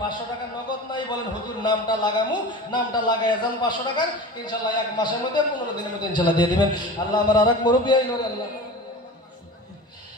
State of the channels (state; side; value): normal; both; correlation 0.34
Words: টাকা নগদ নাই বলেন হুজুর নামটা লাগামু নামটা লাগাই যান 500 টাকা ইনশাল্লাহ 1 মাসের মধ্যে 15 দিনের মধ্যে ইনশাল্লাহ দিয়ে দিবেন আল্লাহ আমার আরেক মুরব্বি আইলো